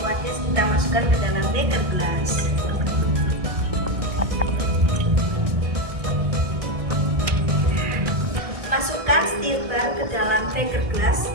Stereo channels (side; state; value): left; late; 1.6 ms